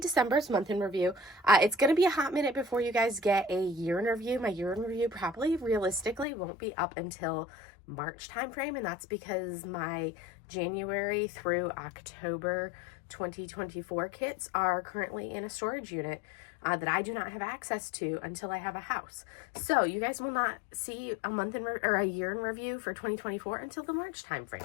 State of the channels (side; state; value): right; drops out; at 6.2 s